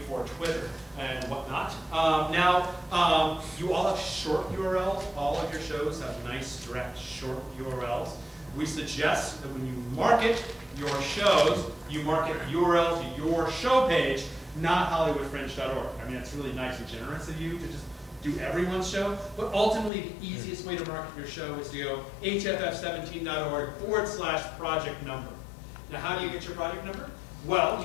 for Twitter and whatnot. Now, you all have short URLs. All of your shows have nice, direct, short URLs. We suggest that when you market your shows, you market URL to your show page, not HollywoodFringe.org. I mean, it's really nice and generous of you to just do everyone's show, but ultimately the easiest way to market your show is to go HFF17.org/project number. Now, how do you get your project number? Well,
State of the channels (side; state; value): right; drops out; at 19.9 s